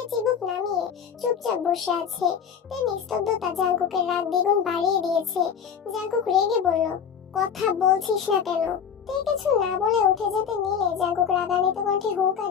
চিবুক নামিয়ে চুপচাপ বসে আছে। তে নিস্তব্ধতা জাঙ্কুকের রাগ দ্বিগুণ বাড়িয়ে দিয়েছে। জাঙ্কুক রেগে বলল, কথা বলছিস না কেন? তুই কিছু না বলে উঠে যেতে নিলে জাঙ্কুক রাগান্বিত কণ্ঠে হুঙ্কার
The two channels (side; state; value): right; quieter; 7.5 dB